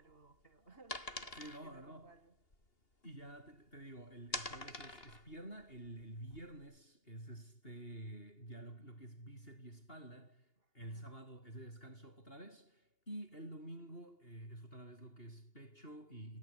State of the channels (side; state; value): right; late; 2.8 ms